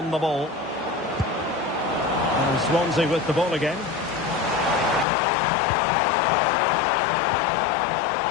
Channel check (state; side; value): drops out; right; at 5.1 s